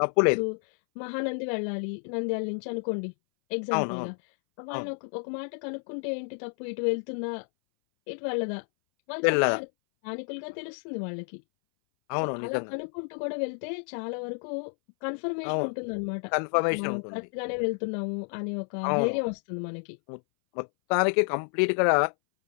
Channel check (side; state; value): right; silent; 58 dB below the other